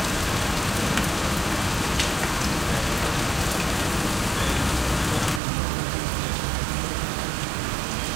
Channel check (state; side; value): drops out; left; at 5.4 s